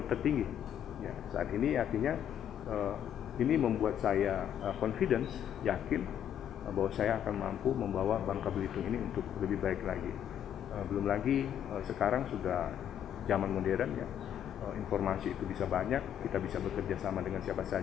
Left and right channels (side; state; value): right; quieter; 9.7 dB